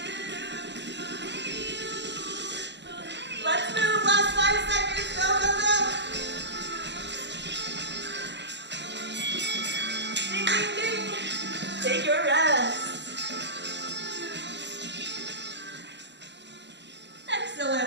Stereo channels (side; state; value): left; late; 0.52 ms